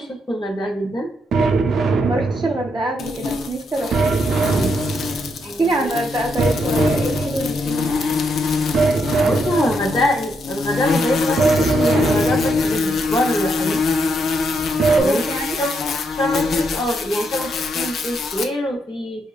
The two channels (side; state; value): both; normal; correlation 0.79